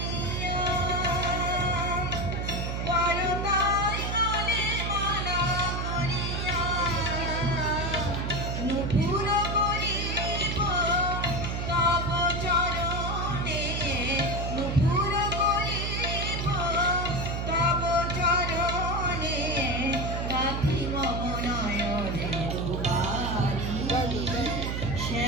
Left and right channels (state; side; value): noise; right; hum, 2 dB below the sound